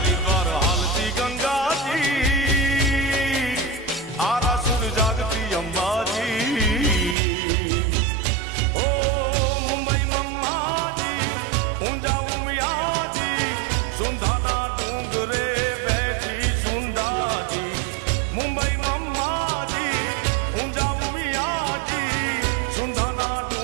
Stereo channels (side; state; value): left; drops out; at 7.2 s